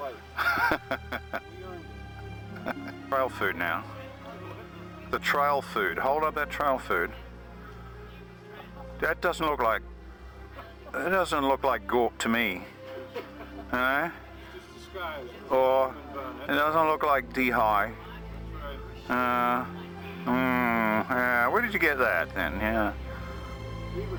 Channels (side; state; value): both; identical; correlation 1.00